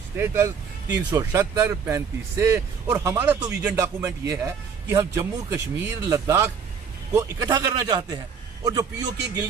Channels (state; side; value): quieter; left; 6.3 dB